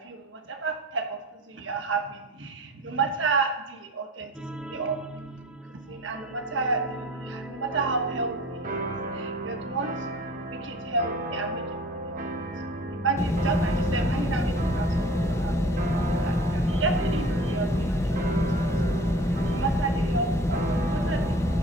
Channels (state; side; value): normal; both; correlation 0.45